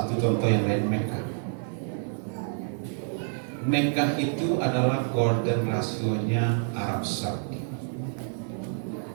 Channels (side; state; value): left; silent; 59 dB below the other